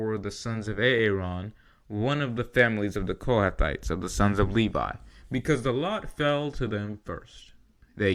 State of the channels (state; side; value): identical; both; correlation 1.00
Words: the sons of Aaron, one of the families of the Kohathites, of the sons of Levi, because the lot fell to them first. They